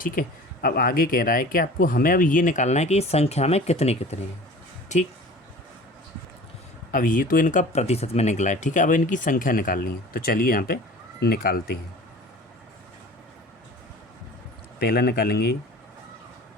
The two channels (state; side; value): normal; both; correlation 0.42